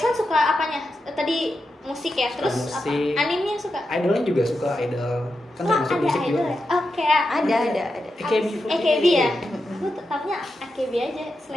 suka apanya? Tadi musik ya, Suka terus musik. apa? Animenya suka? Idolnya juga suka idol. Kan Wah, termasuk ada musik idol juga. ya? Oh, kayak Ada. AKB ya? Aku tahunya AKB aja,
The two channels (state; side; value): normal; both; correlation 0.88